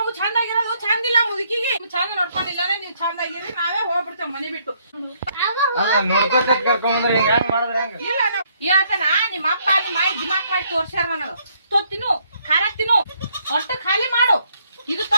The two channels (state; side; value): inverted; both; correlation -0.69